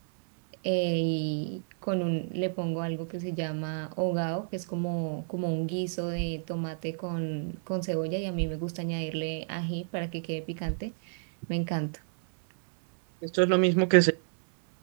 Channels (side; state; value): left; silent; 58 dB below the other